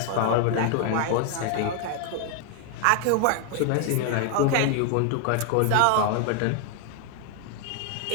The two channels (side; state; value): both; different; correlation 0.00